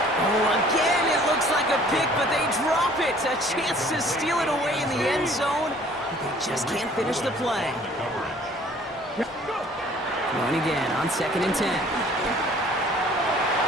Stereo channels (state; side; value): normal; both; correlation 0.54